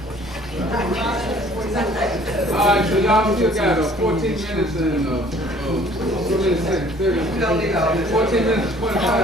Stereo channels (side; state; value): both; normal; correlation 0.55